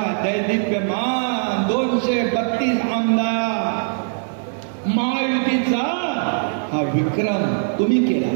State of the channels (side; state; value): left; silent; 65 dB below the other